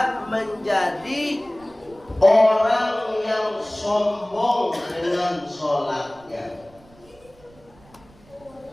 menjadi orang yang sombong dengan sholatnya.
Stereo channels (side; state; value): right; noise; rumble, 27 dB below the sound